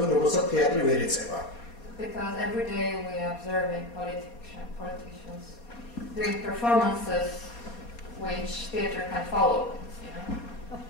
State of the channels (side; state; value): right; late; 4.2 ms